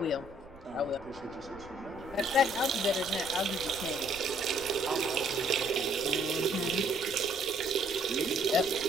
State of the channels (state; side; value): noise; right; rumble, 21 dB below the sound